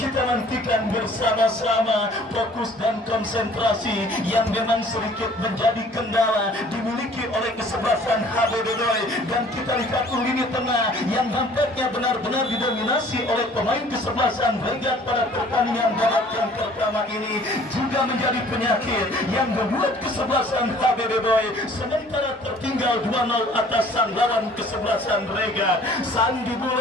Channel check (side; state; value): both; normal; correlation 0.53